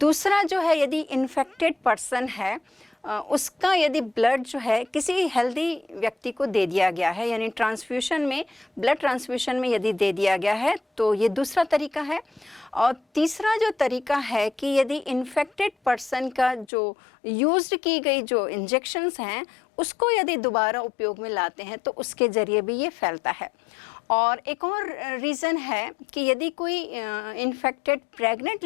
जो है यदि इन्फेक्टेड पर्सन है उसका यदि ब्लड जो है किसी हेल्दी व्यक्ति को दे दिया गया है, यानी ट्रांसफ्यूशन में, ब्लड ट्रांसफ्यूशन में यदि दे दिया गया है, तो ये दूसरा तरीका है। और तीसरा जो तरीका है कि यदि इन्फेक्टेड पर्सन का जो यूज्ड की गई जो इंजेक्शंस हैं उसको यदि दोबारा उपयोग में लाते हैं तो उसके ज़रिए भी ये फैलता है। और एक और रीज़न है कि यदि कोई इन्फेक्टेड प्रेग्नेंट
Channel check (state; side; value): drops out; right; at 16.7 s